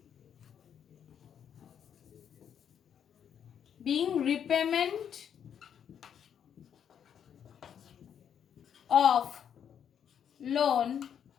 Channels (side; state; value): right; quieter; 8.5 dB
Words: being repayment of loan